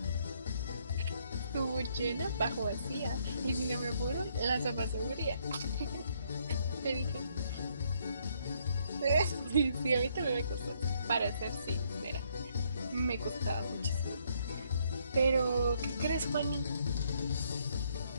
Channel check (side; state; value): both; inverted; correlation -0.70